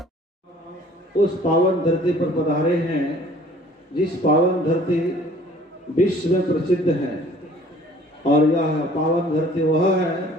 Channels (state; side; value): normal; both; correlation 0.53